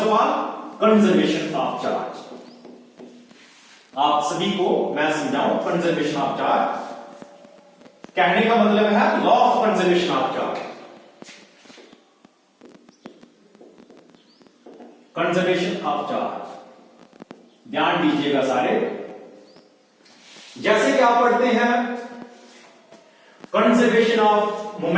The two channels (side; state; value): both; identical; correlation 1.00